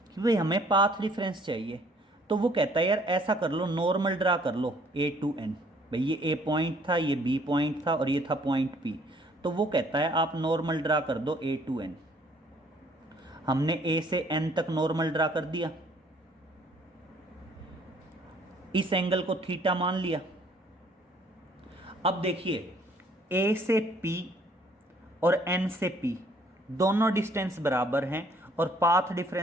कि भाई हमें पाथ डिफरेंस चाहिए, तो वो कहता है यार ऐसा कर लो, नॉर्मल ड्रा कर लो ए टू एन। भाई ये ए पॉइंट था, ये बी पॉइंट था और ये था पॉइंट पी, तो वो कहता है आप नॉर्मल ड्रा कर दो ए टू एन। हमने ए से एन तक नॉर्मल ड्रा कर दिया, इस एंगल को थीटा मान लिया। अब देखिए ए से पी और n से p दोनों डिस्टेंस बराबर हैं और पाथ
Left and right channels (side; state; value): both; normal; correlation 0.61